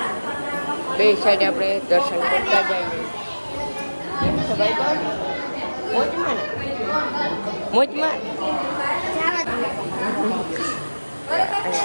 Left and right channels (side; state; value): both; inverted; correlation -1.00